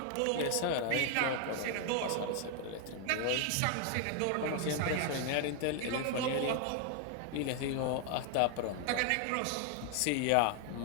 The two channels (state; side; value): different; both; correlation 0.00